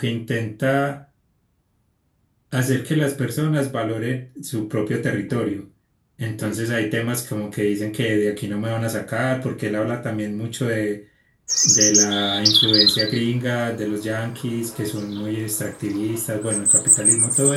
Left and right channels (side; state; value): both; identical; correlation 1.00